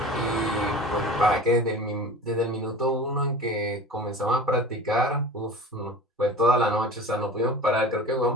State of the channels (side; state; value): both; normal; correlation 0.37